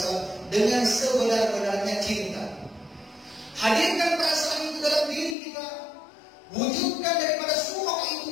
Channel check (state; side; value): drops out; right; at 5.4 s